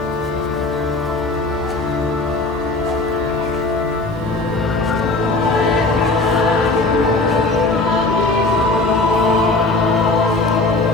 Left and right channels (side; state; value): right; quieter; 3.1 dB